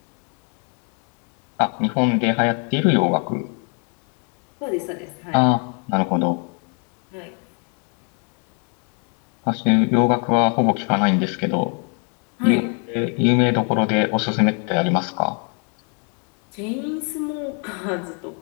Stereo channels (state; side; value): quieter; right; 38.9 dB